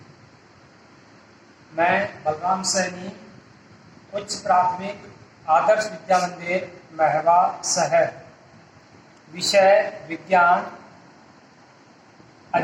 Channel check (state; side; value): identical; both; correlation 1.00